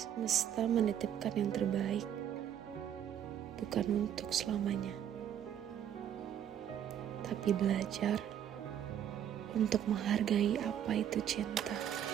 menitipkan yang terbaik, bukan untuk selamanya, tapi belajar untuk menghargai apa itu cinta.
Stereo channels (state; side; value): quieter; left; 9.8 dB